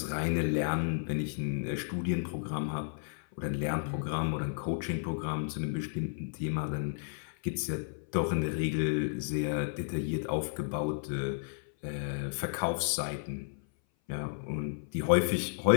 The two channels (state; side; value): silent; right; 56 dB below the other